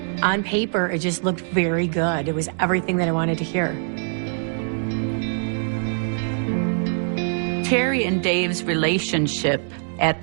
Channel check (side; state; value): left; silent; digital silence